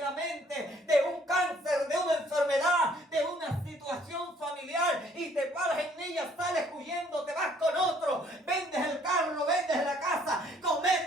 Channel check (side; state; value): both; normal; correlation 0.62